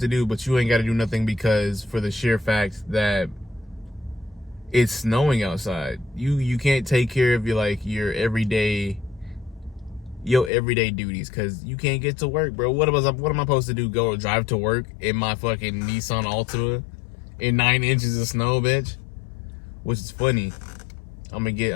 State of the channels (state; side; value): drops out; right; at 10.5 s